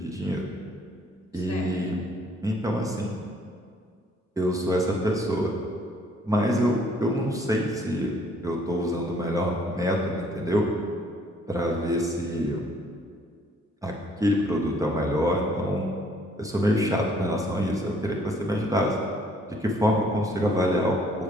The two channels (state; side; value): normal; both; correlation 0.62